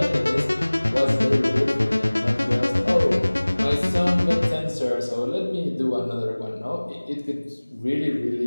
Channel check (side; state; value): both; inverted; correlation -1.00